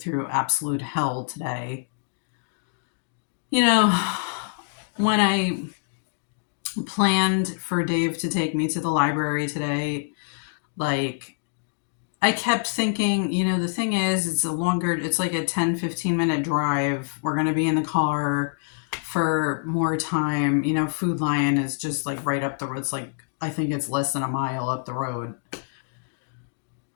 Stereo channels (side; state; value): right; silent; digital silence